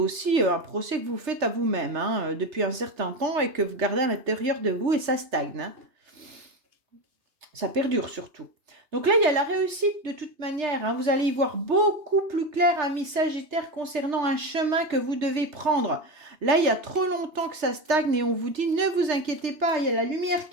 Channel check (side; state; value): left; late; 2.9 ms